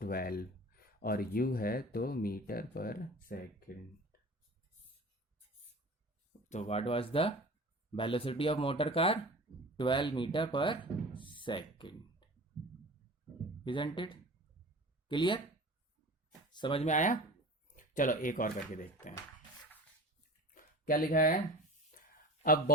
12, और u है तो मीटर पर सेकेंड। तो what was the velocity of motor car? 12 metre पर सेकेंड। Isn't it clear? समझ में आया? चलो एक और करके देखते हैं क्या लिखा है। A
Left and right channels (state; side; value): normal; both; correlation 0.37